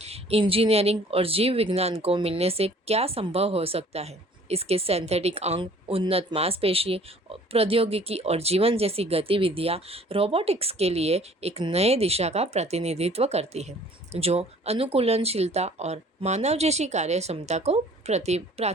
इंजीनियरिंग और जीव विज्ञान को मिलने से क्या संभव हो सकता है, इसके सिंथेटिक अंग, उन्नत मांसपेशी प्रौद्योगिकी और जीवन जैसी गतिविधियाँ रोबोटिक्स के लिए एक नए दिशा का प्रतिनिधित्व करती है, जो अनुकूलनशीलता और मानव जैसी कार्य क्षमता को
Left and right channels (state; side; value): normal; both; correlation 0.53